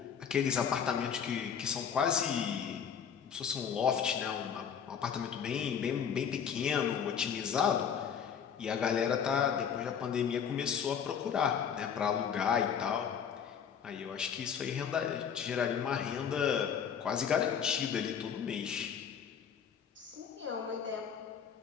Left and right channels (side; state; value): right; quieter; 7.6 dB